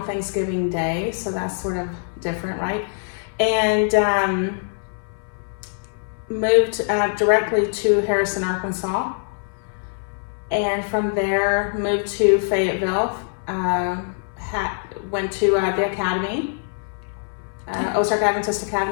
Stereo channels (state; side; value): silent; right; 63 dB below the other